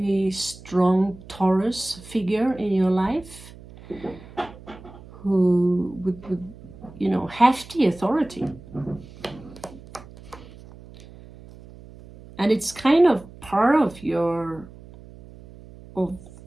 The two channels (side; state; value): right; noise; hum, 19 dB below the sound